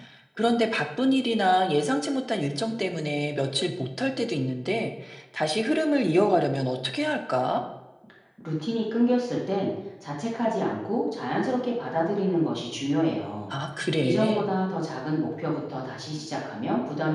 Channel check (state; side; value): identical; both; correlation 1.00